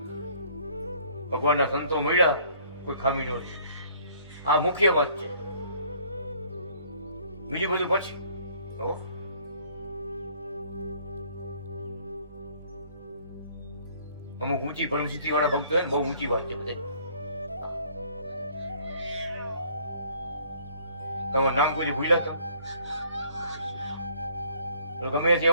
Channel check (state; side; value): inverted; both; correlation -0.58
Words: ભગવાનના સંતો મળ્યા, કોઈ ખામી ન છે. આ મુખ્ય વાત છે. બીજું બધું પછી. અમુક ઊંચી પરમસિદ્ધિ વાળા ભક્તો હોય ને, બહુ ઊંચી વાત છે બધા. તમારું નામ કોઈ ભૂલ્યા તમે? ગમે તે